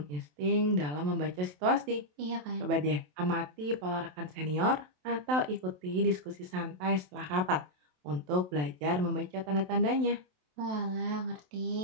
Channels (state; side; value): late; left; 27 ms